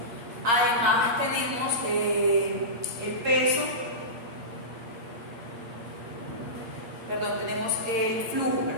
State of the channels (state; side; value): late; left; 8.6 ms